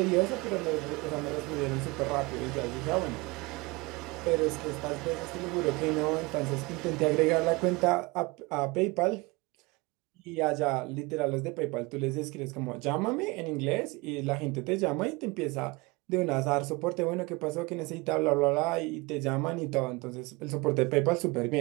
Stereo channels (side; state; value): left; quieter; 24.8 dB